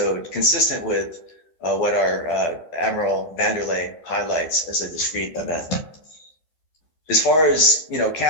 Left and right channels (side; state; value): right; late; 12 ms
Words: consistent with what our Admiral Vanderlei highlights as a discrete event. As far as